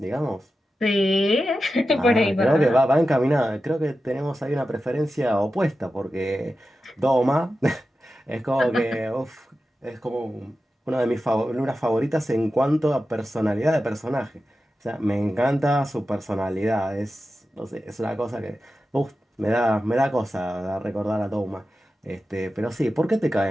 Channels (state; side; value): normal; both; correlation 0.92